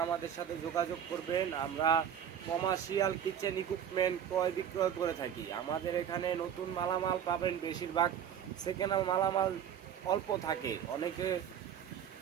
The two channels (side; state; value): left; quieter; 9.1 dB